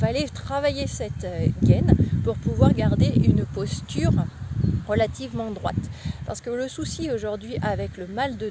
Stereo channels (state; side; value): identical; both; correlation 1.00